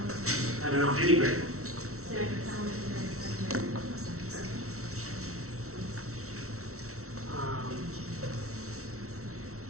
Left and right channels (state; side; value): late; left; 0.63 ms